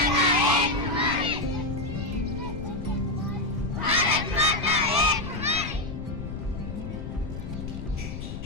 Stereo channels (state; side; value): noise; left; rumble, 7 dB below the sound